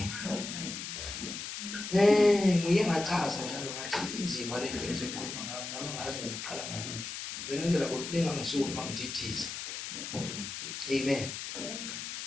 Ngiye ngachaza njalo ngathi inzima le nto ezokhuluma ngami ngazi ngiqala ngakuphi. Benenzela ukulinga ngisuku mangithithiza. Amen.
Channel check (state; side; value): noise; left; hiss, 7 dB below the sound